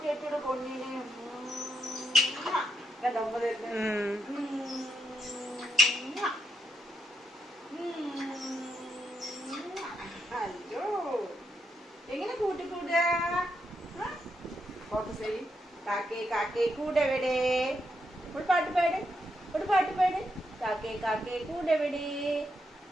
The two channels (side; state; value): both; normal; correlation 0.82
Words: പൊന്നിന് ഉമ്മ തരുന്നത്. അയ്യോ എങ്ങനെ കൂട്ടിക്കൂടുക? കാക്കേ കാക്കേ കൂടെവിടെ? ഒരു പാട്ട് പാട്, ഒരു പാട്ട് പാട്. കാക്കേ കാക്കേ കൂടെവിടെ?